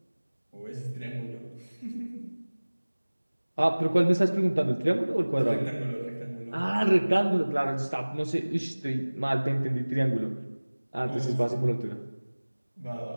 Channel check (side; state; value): both; inverted; correlation -1.00